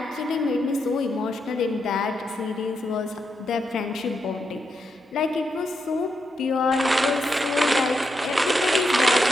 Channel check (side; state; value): both; normal; correlation 0.83